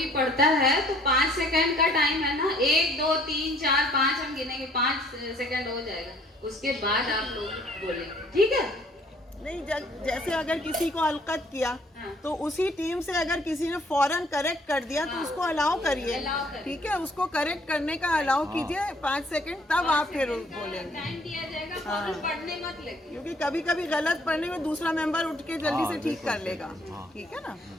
पढ़ता है तो 5 सेकंड का टाइम है ना, 1 2 3 4 5 हम गिनेंगे, 5 सेकंड हो जाएगा, उसके बाद आप लोग बोलेंगे, ठीक है। नहीं, जैसे अगर किसी को अलकत किया हाँ। तो उसी टीम से अगर किसी ने फौरन करेक्ट कर दिया तो उसको अलाउ करिए, अलाउ करिए। ठीक है, उसको करेक्ट करने का अलाउ कीजिए 5 सेकंड, तब आप फिर बोलेंगे। टाइम दिया जाएगा, फौरन पढ़ने मत लगे। क्योंकि कभी कभी गलत पढ़ने में दूसरा मेंबर उठ के जल्दी से ठीक कर लेगा, ठीक है ना।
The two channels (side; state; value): both; normal; correlation 0.60